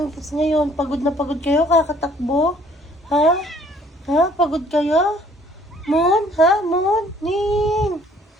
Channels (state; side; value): normal; both; correlation 0.59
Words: tas ngayon. Pagod na pagod kayo, kakatakbo? Ha? Ha? Pagod kayo? Moon? Ha? Moon? Ning?